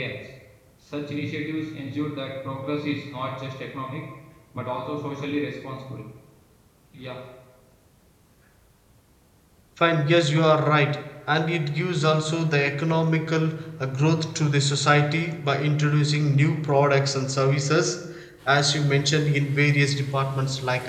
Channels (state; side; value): identical; both; correlation 1.00